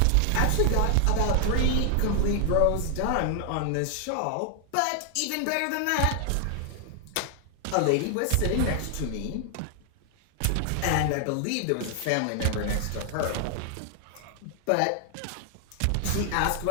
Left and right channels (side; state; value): both; different; correlation 0.00